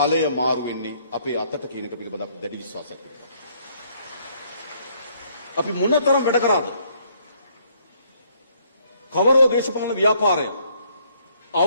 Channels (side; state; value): both; inverted; correlation -0.66